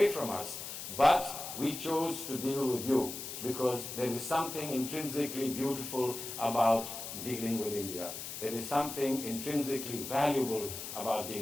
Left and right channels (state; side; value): noise; left; hiss, 8 dB below the sound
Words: from us, but we chose to deal with you because there is something intrinsically beautiful about dealing with India. There is something intrinsically valuable about